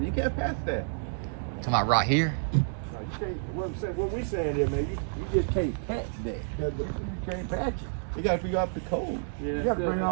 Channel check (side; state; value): left; silent; digital silence